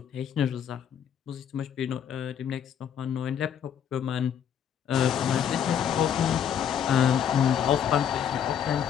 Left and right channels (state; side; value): quieter; right; 8.8 dB